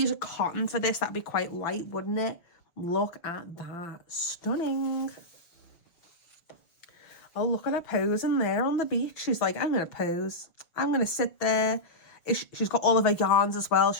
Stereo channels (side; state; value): right; late; 6.1 ms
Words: a cotton for this. That'd be quite light, wouldn't it? Look at that. Stunning. Oh, look at her posing there on the beach. She's like, I'm going to pose. I'm going to sit there. She's got all of her yarns as well.